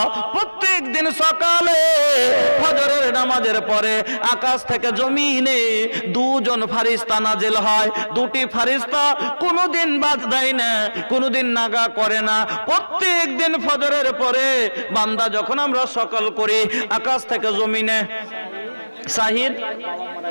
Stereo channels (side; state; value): both; inverted; correlation -1.00